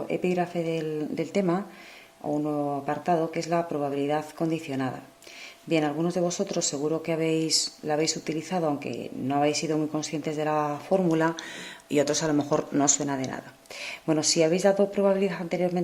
epígrafe del tema o un nuevo apartado que es la probabilidad condicionada. Bien, algunos de vosotros seguro que la habéis utilizado aunque no habéis sido muy conscientes de la fórmula y otros a lo mejor no os suena de nada. Bueno, si habéis dado probabilidad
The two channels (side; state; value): both; identical; correlation 1.00